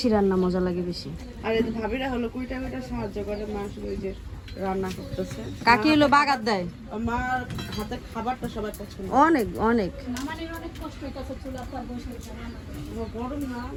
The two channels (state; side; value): identical; both; correlation 1.00